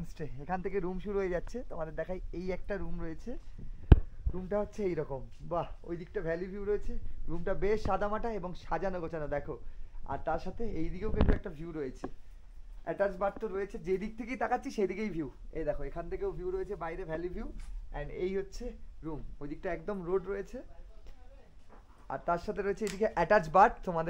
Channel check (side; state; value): both; identical; correlation 1.00